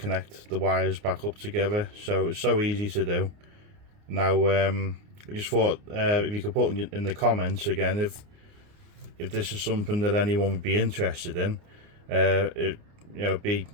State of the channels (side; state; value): left; late; 29 ms